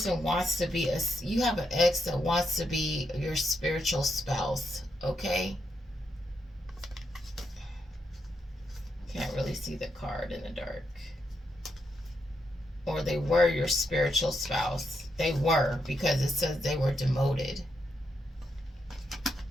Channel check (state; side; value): normal; both; correlation 0.81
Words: wants to be you have an ex that wants to be your spiritual spouse, okay? Can't really see the card in the dark. Or they were your spiritual spouse. They were, because it says they were demoted.